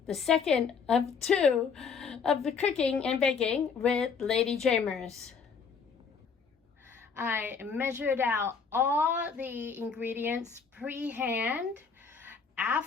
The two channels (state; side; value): quieter; right; 5.8 dB